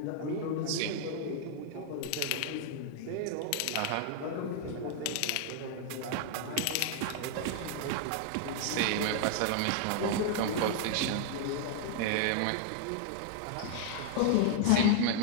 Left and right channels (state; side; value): different; both; correlation 0.00